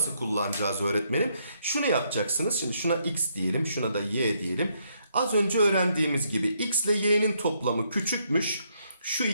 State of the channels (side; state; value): both; inverted; correlation -0.74